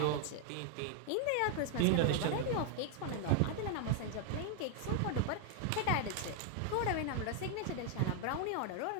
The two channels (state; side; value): different; both; correlation 0.00